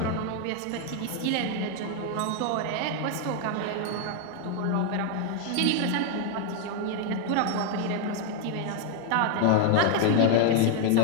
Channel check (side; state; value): both; different; correlation 0.00